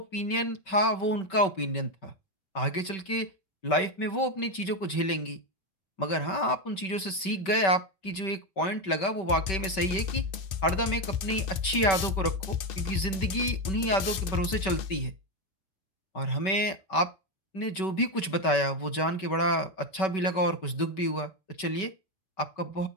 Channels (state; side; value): late; right; 5.2 ms